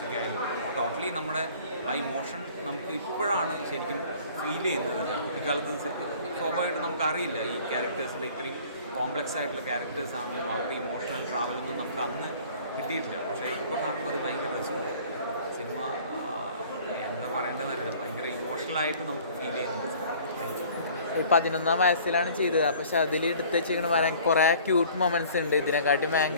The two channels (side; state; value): both; inverted; correlation -0.50